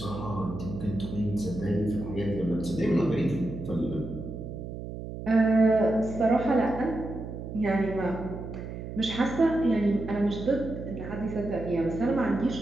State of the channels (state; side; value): noise; right; hum, 9 dB below the sound